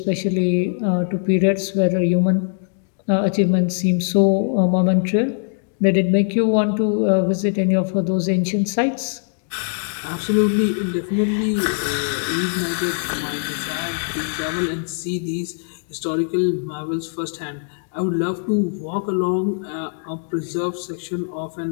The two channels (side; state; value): right; silent; digital silence